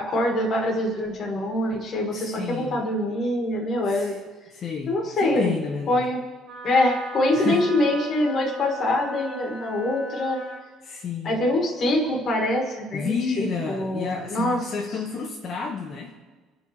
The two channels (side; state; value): both; normal; correlation 0.66